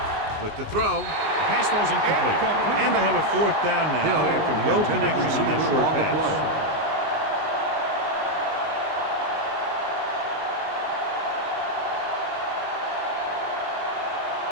With the throw, the pass falls incomplete. And they'll have a 4th down now after no connection on that short pass.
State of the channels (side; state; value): left; late; 19 ms